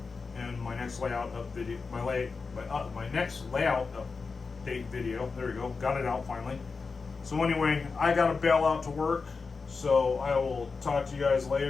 in my next layout up video. My next layout update video. There we go. Got it out finally. So anyway, I got to bail out to work. So I will talk to you guys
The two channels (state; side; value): quieter; right; 4.6 dB